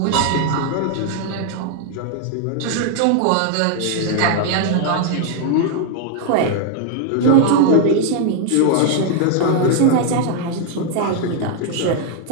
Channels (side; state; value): both; different; correlation 0.00